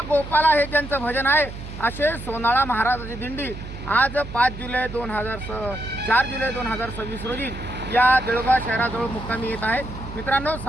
गोपाला हे ज्यांचं भजन आहे असे सोनाळा महाराजाची दिंडी आज 4 जुलै 2026 रोजी या देऊळगाव शहराजवळ मुक्कामी येत आहे. मित्रांनो,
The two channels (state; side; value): noise; right; hum, 11 dB below the sound